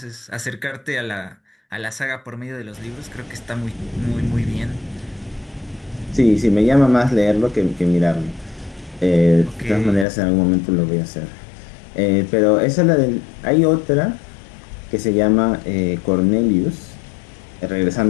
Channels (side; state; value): right; drops out; at 10.1 s